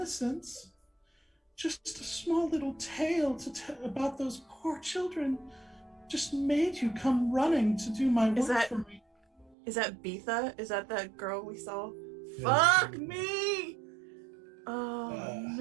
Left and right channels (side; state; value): left; drops out; at 9.6 s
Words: Just a small little tale to tell about those poor children just made you come running to do my work for me." Is that Beetha? Is that girl we saw? Yeah. Fuck me! Oh